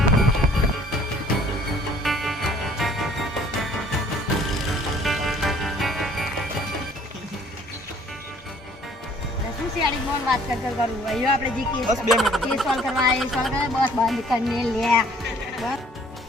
बात कर करूँ वही आपने जी केस बस 2 मिनट केस सॉल्व करवाए बस बंद करने लिया बस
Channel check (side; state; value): both; normal; correlation 0.57